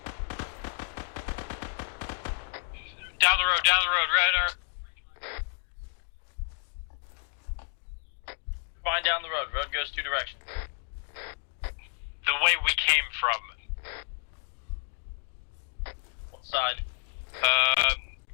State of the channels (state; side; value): silent; right; digital silence